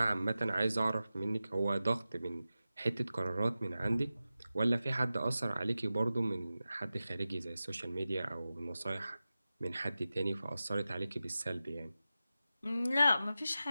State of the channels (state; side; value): inverted; both; correlation -0.94